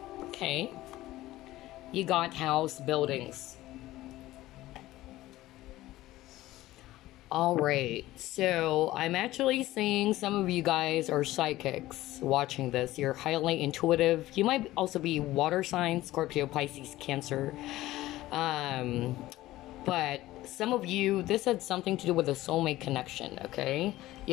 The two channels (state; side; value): quieter; right; 16.4 dB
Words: Okay. You got house buildings. Alright, so I'm actually seeing some of you guys are psychics watching this. You're highly intuitive. You might also be water signs, Scorpio, Pisces, Cancer. But some of you, this had something to do with a soulmate connection, okay? You